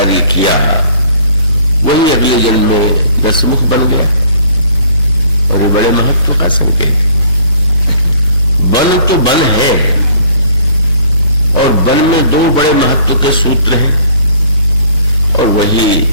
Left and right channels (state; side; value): inverted; both; correlation -0.56